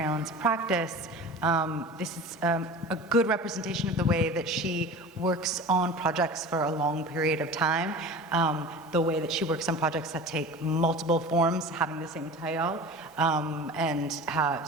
Ellen's practice, this is a good representation of the way that she works on projects for a long period of time, the way that she works on projects that take multiple forms, having the same title, and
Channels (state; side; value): normal; both; correlation 0.36